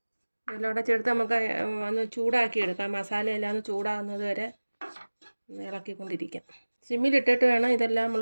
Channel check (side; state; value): both; inverted; correlation -1.00